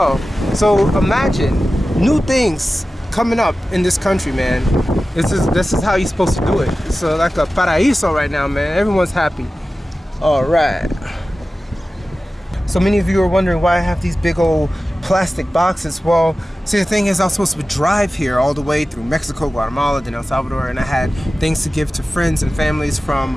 So imagine new things coming up in this country, man. This is how you're supposed to do it. It's like a paraíso right now, man. Everyone's happy. All right. So many of you are wondering why I have these big old plastic boxes. Well, see, the thing is, I was supposed to drive here all the way through Mexico, Guatemala, then El Salvador, and I had things to give to friends and families from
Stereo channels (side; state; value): both; normal; correlation 0.95